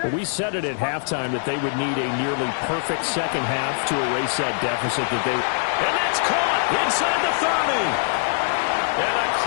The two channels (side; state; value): right; silent; 64 dB below the other